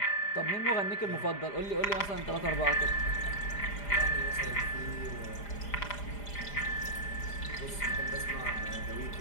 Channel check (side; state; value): right; late; 4.9 ms